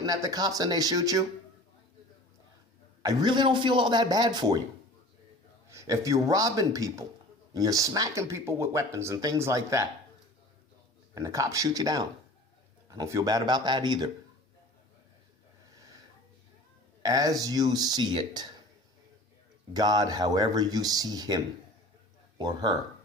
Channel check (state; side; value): normal; both; correlation 0.41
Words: at the cops and they shoot you, I really don't feel all that bad for you. If you're robbing people and you're smacking people with weapons and things like that, and the cops shoot you down, I don't feel bad about that either. As you see it, God, however you see him or her,